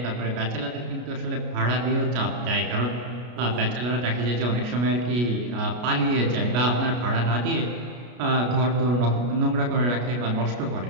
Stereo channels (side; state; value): left; late; 33 ms